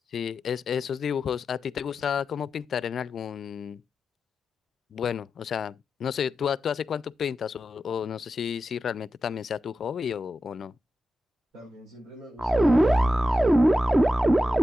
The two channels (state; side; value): normal; both; correlation 0.90